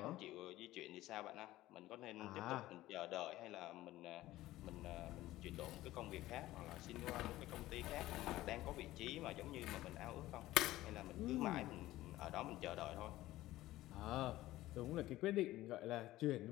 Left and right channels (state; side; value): quieter; right; 16.2 dB